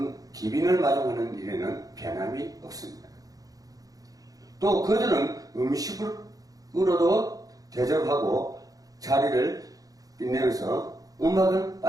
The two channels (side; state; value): left; late; 0.17 ms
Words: 마중하는 일에는 변함이 없습니다. 또 그들은 음식으로도 대접하고 자리를 빛내면서 음악은